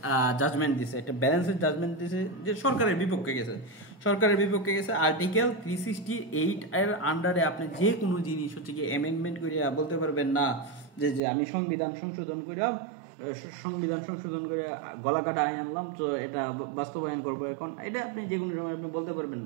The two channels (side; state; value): left; drops out; at 11.2 s